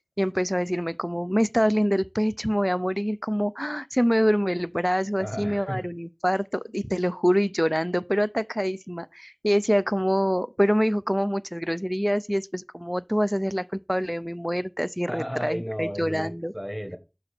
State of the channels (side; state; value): both; identical; correlation 1.00